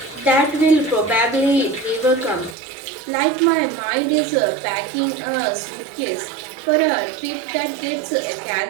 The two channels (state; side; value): drops out; left; at 2.6 s